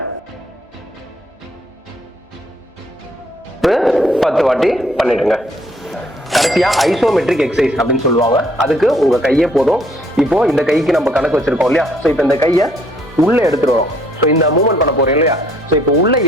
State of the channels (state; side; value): normal; both; correlation 0.65